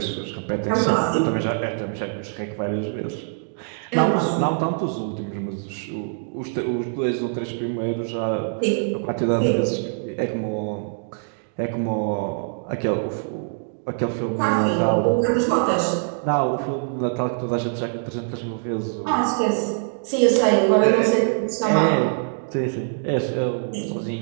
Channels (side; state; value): left; silent; digital silence